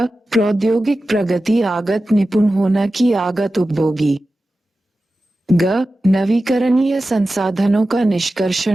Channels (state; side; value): normal; both; correlation 0.94